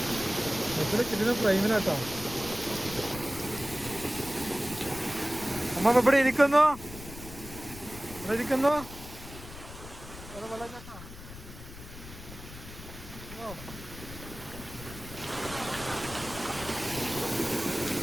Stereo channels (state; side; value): noise; left; rumble, 14 dB below the sound